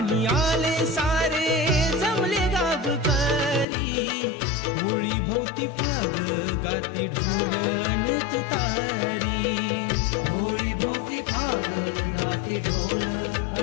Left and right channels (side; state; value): right; drops out; at 3.7 s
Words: आले सारे जमले गावकरी, होळी भोवती फाग गाती ढोल अन तुतारी. होळी भोवती फाग गाते ढोल